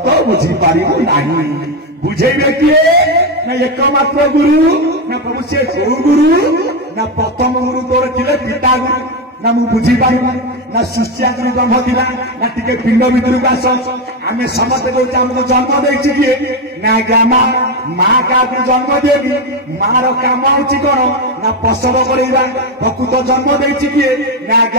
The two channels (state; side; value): normal; both; correlation 0.10